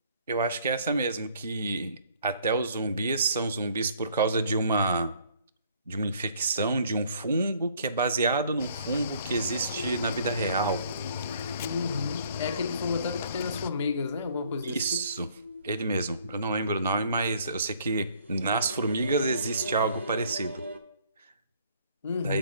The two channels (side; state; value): both; inverted; correlation -0.60